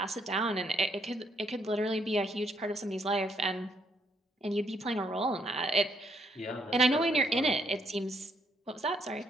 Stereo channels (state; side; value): normal; both; correlation 0.72